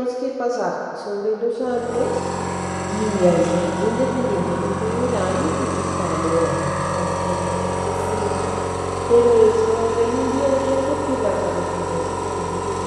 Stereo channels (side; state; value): both; identical; correlation 1.00